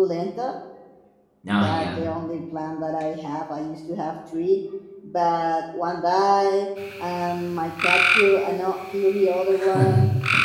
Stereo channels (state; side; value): identical; both; correlation 1.00